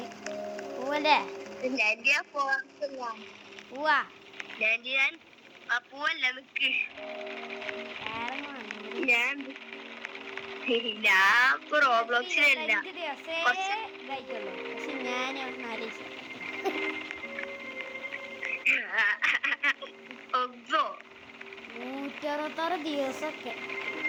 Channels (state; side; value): identical; both; correlation 1.00